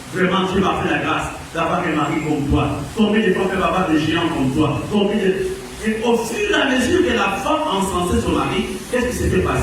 Vraiment, Dieu m'a fait la grâce d'avoir un mari comme toi. Combien de fois peut avoir des géants comme toi? Et au fur et à mesure que la femme encensait son mari, qu'est-ce qui s'était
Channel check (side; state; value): both; identical; correlation 1.00